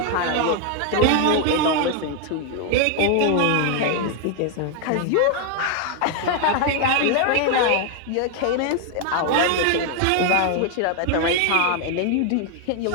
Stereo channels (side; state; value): both; different; correlation 0.00